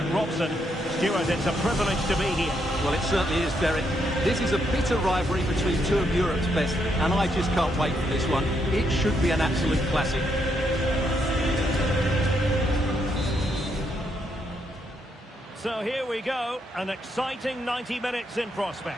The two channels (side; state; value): both; normal; correlation 0.77